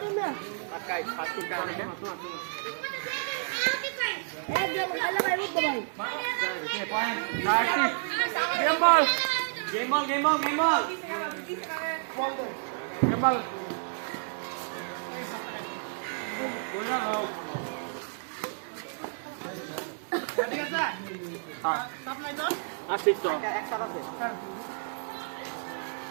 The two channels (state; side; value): silent; left; 57 dB below the other